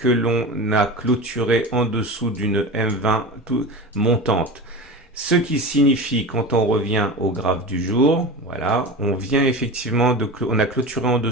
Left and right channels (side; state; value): both; normal; correlation 0.29